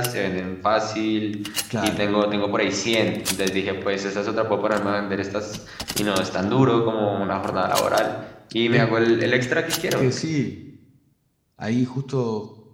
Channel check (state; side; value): identical; both; correlation 1.00